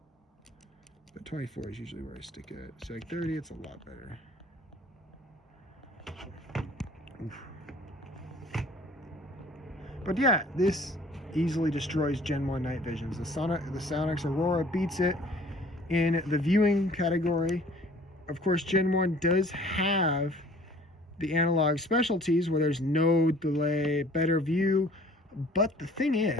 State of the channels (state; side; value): normal; both; correlation 0.52